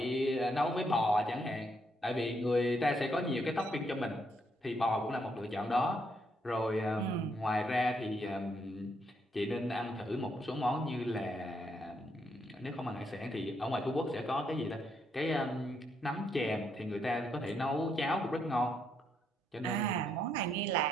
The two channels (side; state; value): both; normal; correlation 0.76